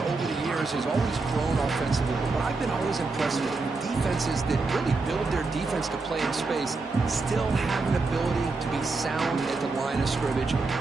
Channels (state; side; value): quieter; left; 3.8 dB